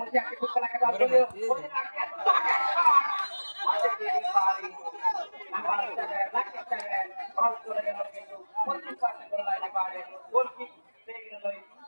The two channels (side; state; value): both; inverted; correlation -1.00